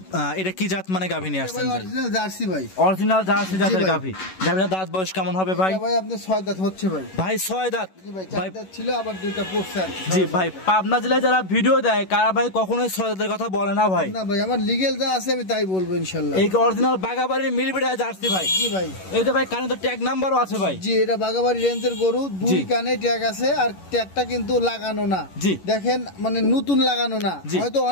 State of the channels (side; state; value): right; late; 11 ms